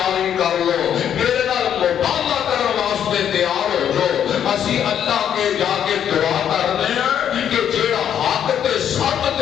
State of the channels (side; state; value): right; quieter; 9.3 dB